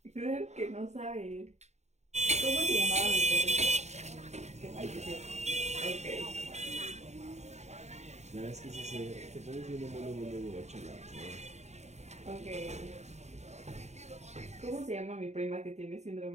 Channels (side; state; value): left; late; 0.32 ms